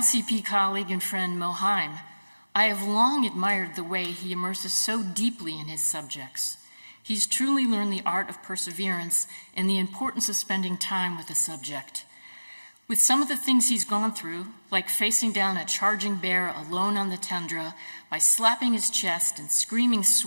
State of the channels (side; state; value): both; inverted; correlation -1.00